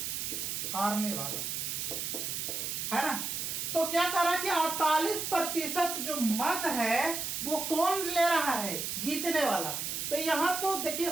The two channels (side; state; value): right; noise; hiss, 3 dB below the sound